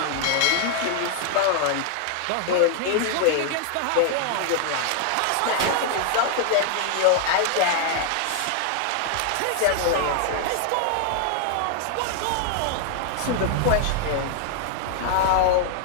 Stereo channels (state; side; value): different; both; correlation 0.00